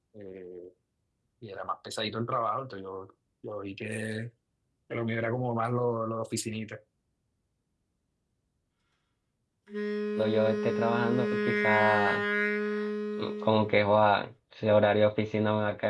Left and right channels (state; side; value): identical; both; correlation 1.00